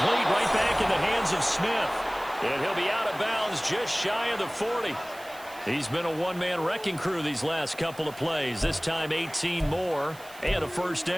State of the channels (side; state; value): right; noise; hiss, 20 dB below the sound